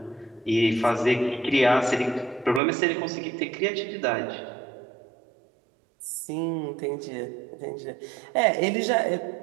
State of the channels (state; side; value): drops out; left; at 2.6 s